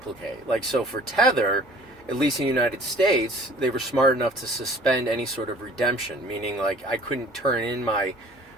Like, so for Tether, at least in the United States, they were smart enough to suspend any sort of redemption, meaning like I couldn't turn in my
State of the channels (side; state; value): both; normal; correlation 0.49